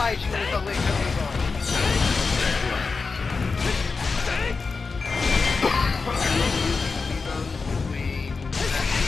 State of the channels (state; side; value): quieter; right; 4.5 dB